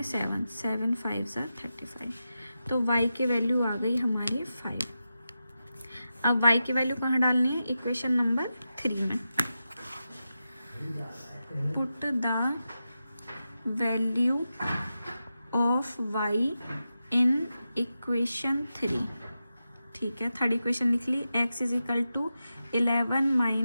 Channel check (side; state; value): both; inverted; correlation -0.90